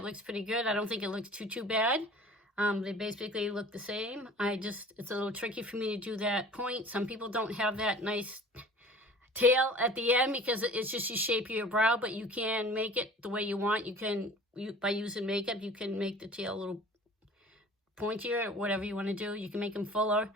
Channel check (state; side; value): normal; both; correlation 0.45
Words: looks pretty good. I don't think it looks too bad. They basically look the same. It's a little tricky for me to do that point. Some people don't have that nice tail at the end because it's just the shape of your brow, but you can make it the way you want. By using makeup, you can make the tail a little pointier, or whatever you want to do. You can make them fuller.